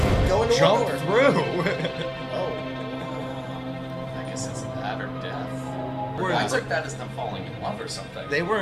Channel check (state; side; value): identical; both; correlation 1.00